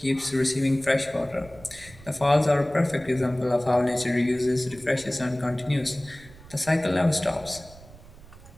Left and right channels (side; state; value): right; noise; rumble, 21 dB below the sound